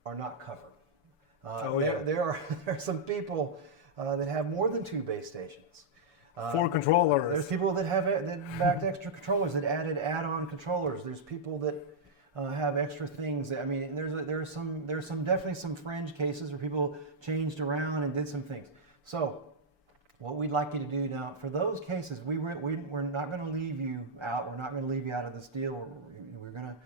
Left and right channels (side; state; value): both; normal; correlation -0.06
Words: are not covered. There are some people that have more than 2 base stations. 4 controllers. There's people that backed extra controllers, that added add-on controllers. There's people that have extra things. I mean, there's definitely some fringe cases where people changed around and did some things. So, what we'd like you to do now, for those cases, we're not going to leave you out. We're not going to leave you out of this deal. We're going to